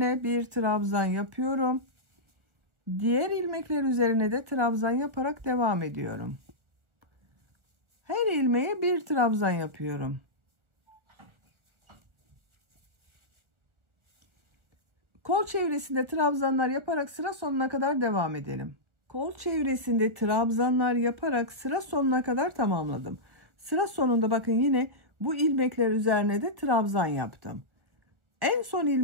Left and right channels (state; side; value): late; left; 1.4 ms